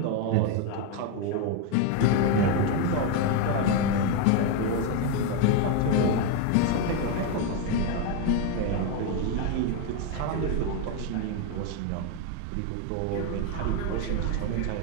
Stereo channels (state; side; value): different; both; correlation 0.02